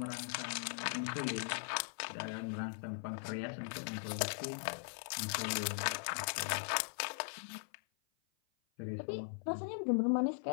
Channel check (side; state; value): right; silent; 51 dB below the other